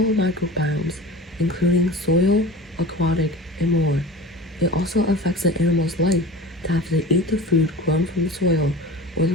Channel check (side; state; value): both; normal; correlation 0.37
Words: microbiomes, including soil, aquatic, and more. It also affects the animal's life to have to eat the food grown from the soil, or